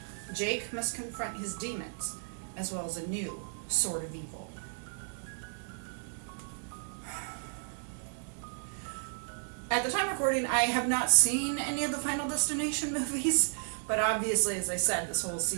Jake must confront his demons, as well as a new sort of evil. At the time of recording, I have not seen any of the Final Destination movies, but obviously, as I said, this whole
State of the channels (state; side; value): silent; left; 56 dB below the other